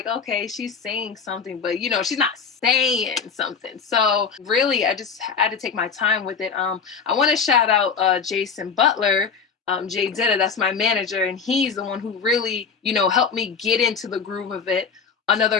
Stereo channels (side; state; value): right; quieter; 5.9 dB